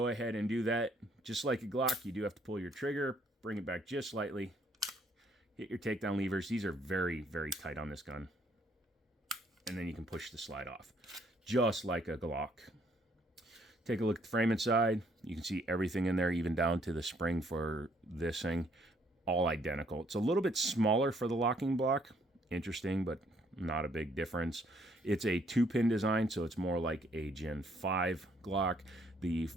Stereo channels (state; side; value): normal; both; correlation 0.67